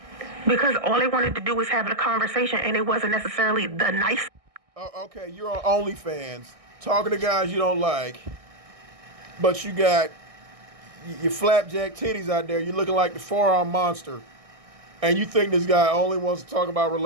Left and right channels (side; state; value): left; late; 1.6 ms